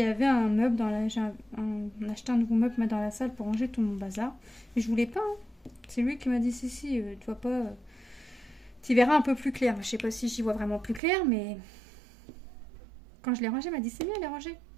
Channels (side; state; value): left; drops out; at 11.0 s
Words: avait un meuble dans la... J'ai acheté un nouveau meuble dans la salle pour ranger tout mon bazar. Mais je voulais pas. Hein. C'est lui qui m'a dit si, tu vois pas... Tu verras un peu plus clair. Je sais pas si j'y vois vraiment plus clair, mais quand je l'ai rangé, il m'a dit c'est bien, elle est rangée.